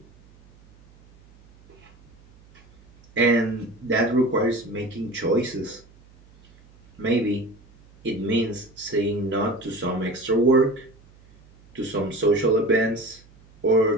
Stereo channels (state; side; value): noise; right; hum, 27 dB below the sound